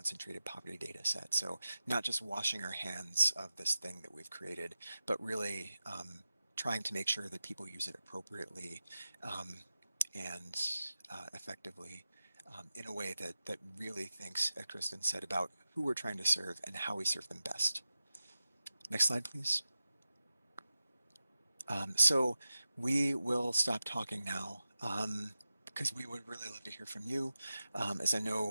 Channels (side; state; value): both; inverted; correlation -0.93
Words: poverty data set. So not just washing our hands of this thing that we've created, but really trying to make sure that people use it appropriately and effectively in a way that really thinks, as Krysten said, about who we're trying to serve and how we serve them best. Next slide, please. So we will stop talking now because we would really love to hear from you. As I